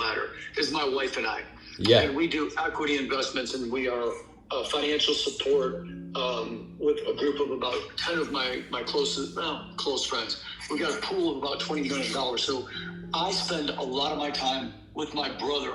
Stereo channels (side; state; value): both; identical; correlation 1.00